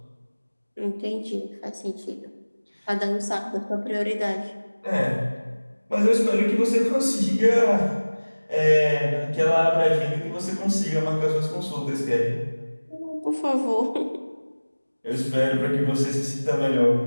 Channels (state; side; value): inverted; both; correlation -1.00